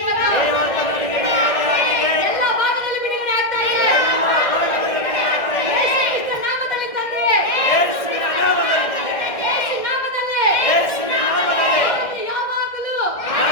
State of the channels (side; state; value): right; late; 1.6 ms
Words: ಎಲ್ಲ ಭಾಗದಲ್ಲಿ ಬಿಡುಗಡೆ ಆಗ್ತಾ ಇದೆ. ನಾಮದಲ್ಲಿ ತಂದೆ, ನಾಮದಲ್ಲಿ ಯಾವಾಗಲೂ